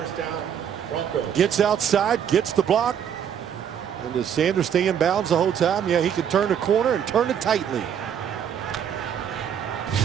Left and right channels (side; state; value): left; quieter; 8.6 dB